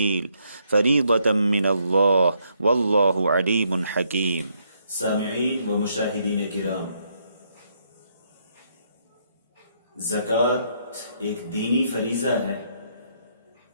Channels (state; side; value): inverted; both; correlation -0.74